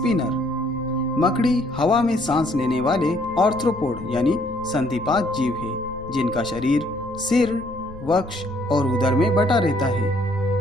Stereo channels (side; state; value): left; noise; rumble, 19 dB below the sound